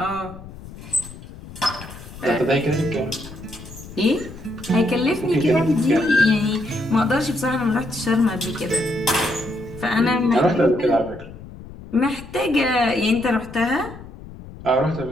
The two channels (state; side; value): noise; left; rumble, 15 dB below the sound